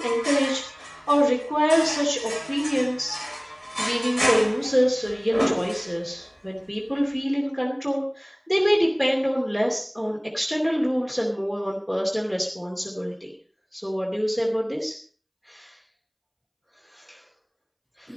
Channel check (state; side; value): identical; both; correlation 1.00